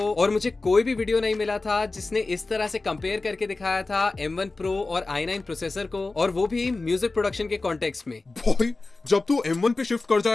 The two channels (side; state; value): right; quieter; 3.4 dB